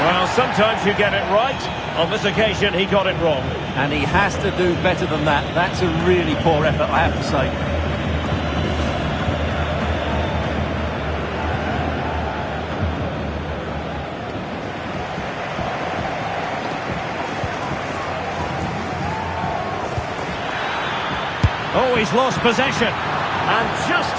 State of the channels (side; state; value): both; identical; correlation 1.00